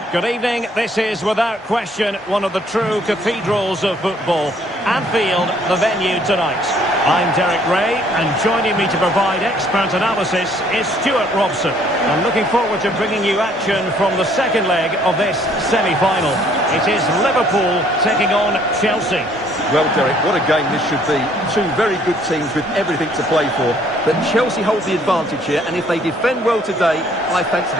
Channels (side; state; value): both; normal; correlation 0.62